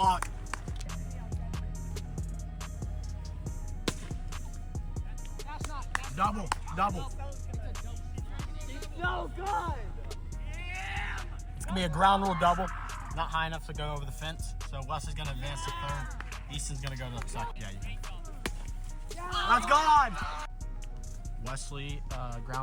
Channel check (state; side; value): identical; both; correlation 1.00